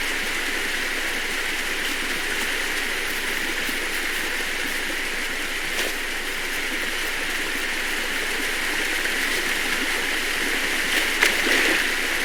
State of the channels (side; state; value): both; identical; correlation 1.00